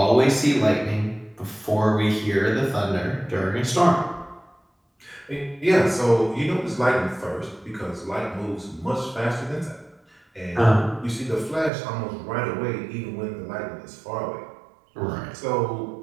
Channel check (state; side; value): drops out; left; at 11.7 s